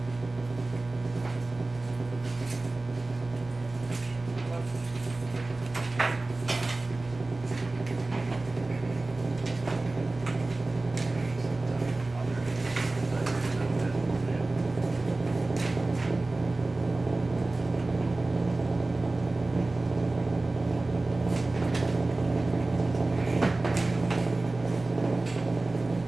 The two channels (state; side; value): quieter; left; 3.1 dB